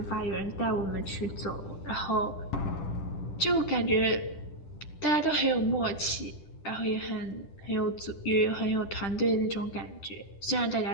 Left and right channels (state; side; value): late; right; 10 ms